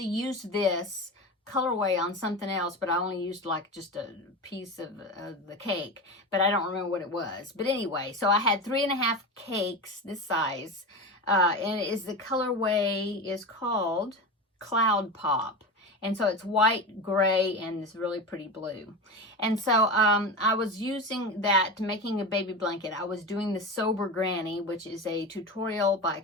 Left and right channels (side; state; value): both; normal; correlation 0.24